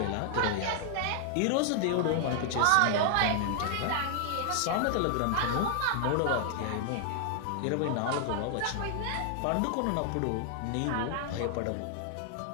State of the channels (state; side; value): different; both; correlation 0.00